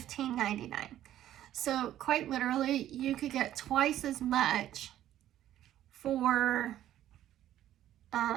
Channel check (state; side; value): quieter; left; 12.3 dB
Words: So quite literally, you could get twice as much for